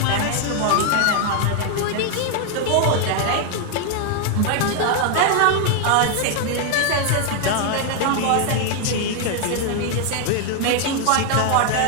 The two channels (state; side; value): different; both; correlation 0.00